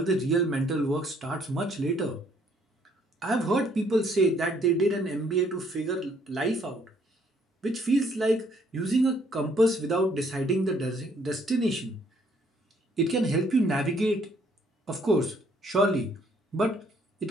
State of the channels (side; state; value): both; normal; correlation 0.65